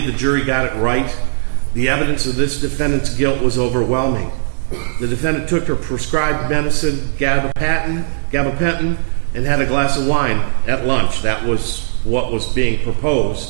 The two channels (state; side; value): silent; left; digital silence